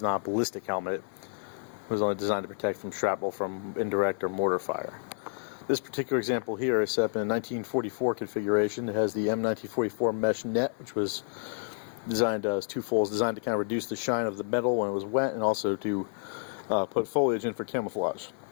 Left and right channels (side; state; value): right; silent; 58 dB below the other